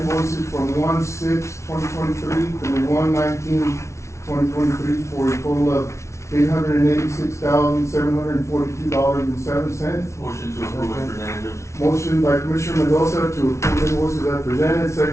from 1/6/2023 through 1/19/2023 for a total of $886,742.07. Motion to approve as presented. Motion by Commissioner Mendoza to approve invoices as presented,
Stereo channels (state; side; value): late; right; 0.13 ms